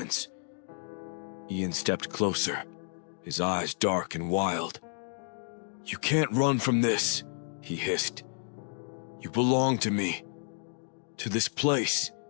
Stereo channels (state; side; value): silent; right; digital silence